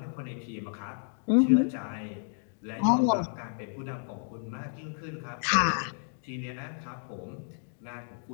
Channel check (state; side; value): silent; right; digital silence